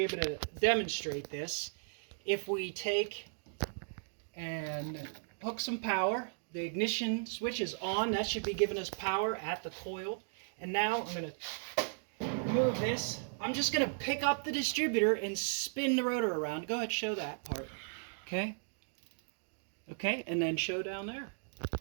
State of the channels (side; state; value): left; silent; digital silence